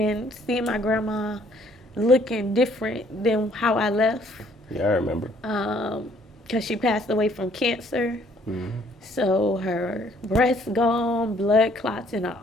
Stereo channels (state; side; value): normal; both; correlation 0.62